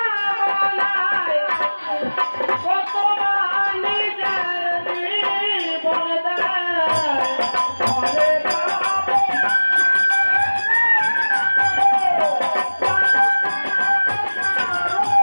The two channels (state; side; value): inverted; both; correlation -1.00